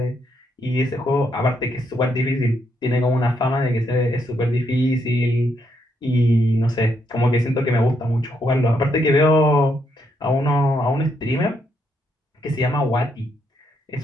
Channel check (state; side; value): normal; both; correlation 0.76